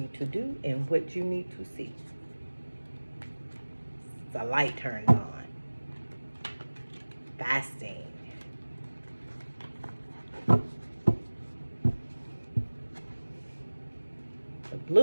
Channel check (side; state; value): both; inverted; correlation -1.00